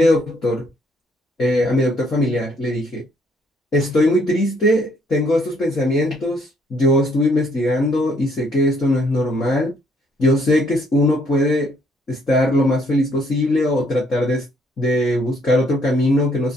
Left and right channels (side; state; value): both; normal; correlation 0.67